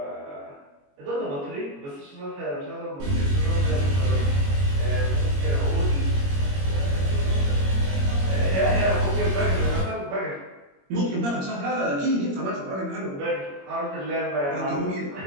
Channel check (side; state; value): left; late; 21 ms